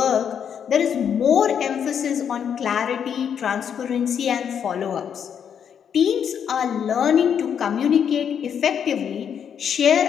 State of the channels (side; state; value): right; quieter; 8.0 dB